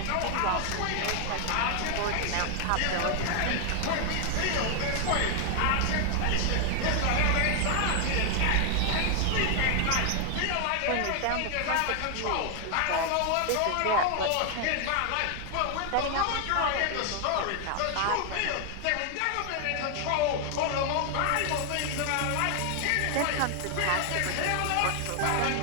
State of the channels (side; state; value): both; different; correlation 0.00